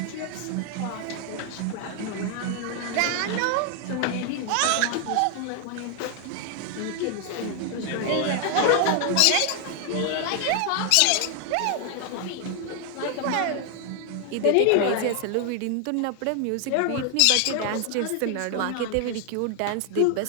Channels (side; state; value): both; different; correlation 0.00